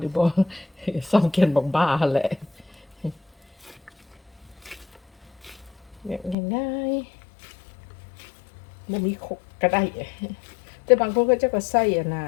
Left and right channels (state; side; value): drops out; right; at 6.4 s